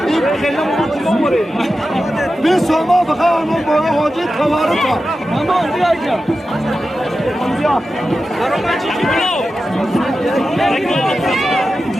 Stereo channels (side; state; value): both; normal; correlation 0.92